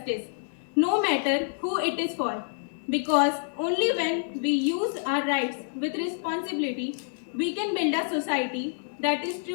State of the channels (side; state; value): right; silent; 59 dB below the other